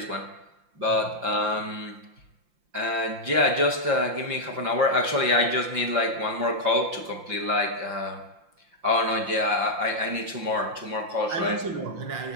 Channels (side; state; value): left; late; 5.7 ms